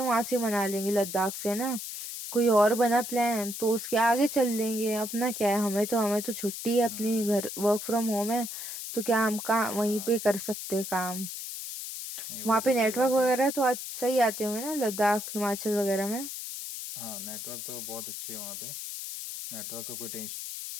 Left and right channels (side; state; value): left; noise; hiss, 7 dB below the sound